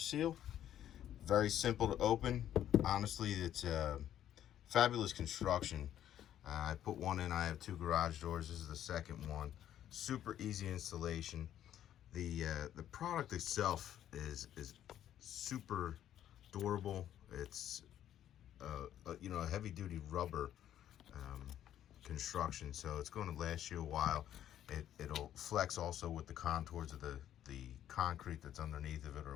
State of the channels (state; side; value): quieter; right; 11.2 dB